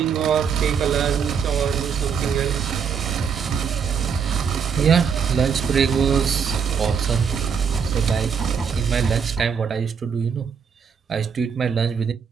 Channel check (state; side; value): quieter; left; 6.7 dB